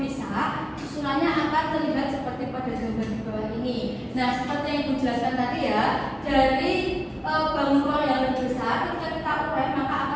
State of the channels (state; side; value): identical; both; correlation 1.00